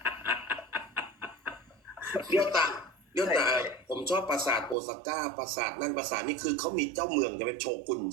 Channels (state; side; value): drops out; left; at 4.8 s